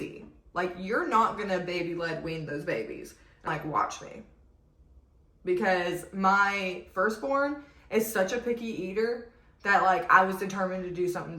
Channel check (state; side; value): identical; both; correlation 1.00